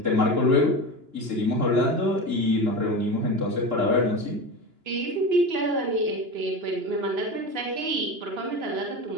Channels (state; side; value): late; left; 2.9 ms